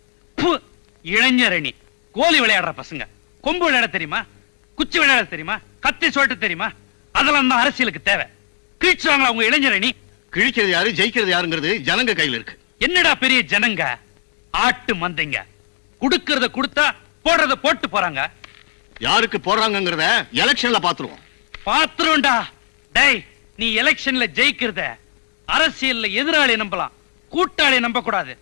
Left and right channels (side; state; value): right; silent; digital silence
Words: இளைஞரணி கோலி விளையாடுற பசங்க. கொம்பு விளையாட தெரியுமா? குச்சி விளையாட தெரியுமா? கத்தி சொல்லிட்டு தெரியுமா? அதெல்லாம் தான் அரசியலுக்கு தேவை. கிழிச்சாங்க அவங்க இளைஞரணி. கிழிக்கிறது யாரு, ஜெயிக்கிறது யாருங்கிறது ஜனங்க கையில இருக்கு. என்னடா பெரிய ஜனங்க? ஆட்டு மந்தைங்க. குடுக்கறத கொடுத்தா போடுறத போட்டு போறாங்க. யாருக்கு போடுறாங்கிறத எலெக்ஷன்ல பாத்துருவோம். பாத்துருவோம்டா. டேய், நீ எலெக்ஷன்ல ஜெயிக்கிறத அரசியல்ல எதிராளி நம்பலாம், கூட்டாளி நம்ப கூடாது.